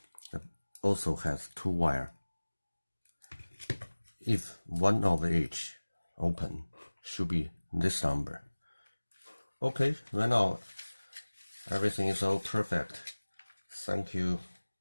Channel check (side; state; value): both; inverted; correlation -1.00